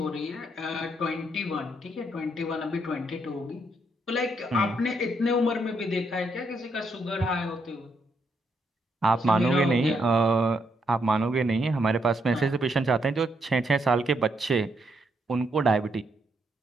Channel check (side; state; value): both; normal; correlation 0.76